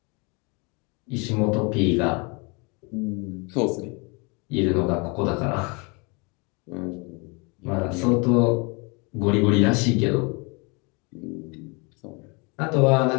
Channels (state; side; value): quieter; right; 30.5 dB